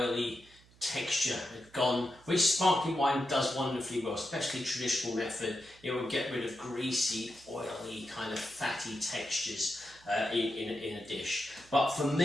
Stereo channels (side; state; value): right; noise; hum, 27 dB below the sound